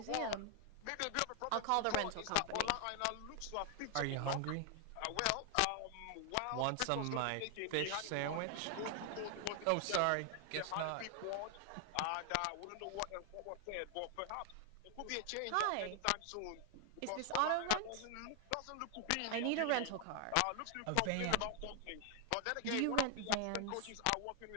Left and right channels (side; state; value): both; different; correlation 0.00